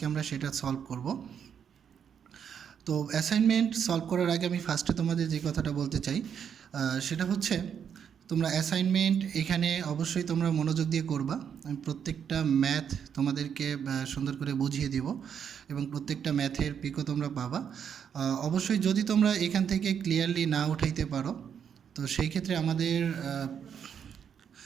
আমরা সেটা সলভ করব। তো অ্যাসাইনমেন্ট সলভ করার আগে আমি ফার্স্টে তোমাদের যে কথাটা বলতে চাই সেটা হচ্ছে তোমরা অ্যাসাইনমেন্ট এখানে অবশ্যই তোমরা মনোযোগ দিয়ে করবা। আমি প্রত্যেকটা ম্যাথ তোমাদেরকে সুন্দর করে বুঝিয়ে দিব এবং প্রত্যেকটা ম্যাথের পিকও তোমরা পাবা। অবশ্যই যদি তোমরা এখান থেকে ক্লিয়ারলি না উঠাইতে পারো তো সেই ক্ষেত্রে আমাদের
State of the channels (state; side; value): quieter; left; 7.9 dB